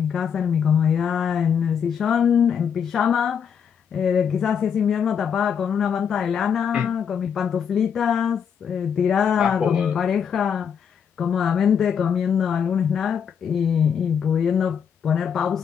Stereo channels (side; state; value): right; quieter; 7.5 dB